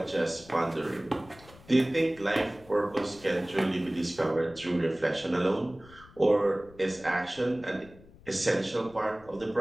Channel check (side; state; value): left; noise; rumble, 23 dB below the sound